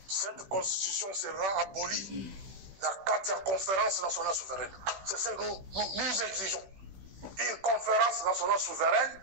Cette constitution sera abolie dans la 4e conférence nationale souveraine. C'est ce que nous exigeons. Une conférence nationale souveraine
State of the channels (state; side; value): late; left; 16 ms